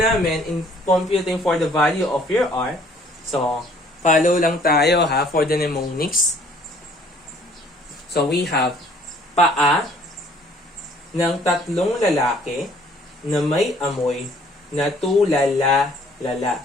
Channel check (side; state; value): both; normal; correlation 0.58